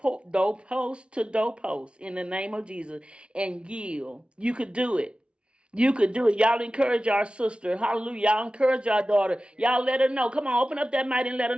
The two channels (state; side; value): late; left; 0.058 ms